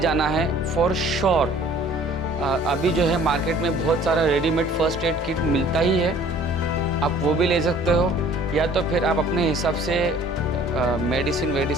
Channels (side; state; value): both; normal; correlation 0.52